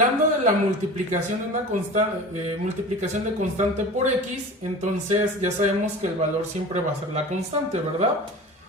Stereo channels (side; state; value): both; normal; correlation 0.36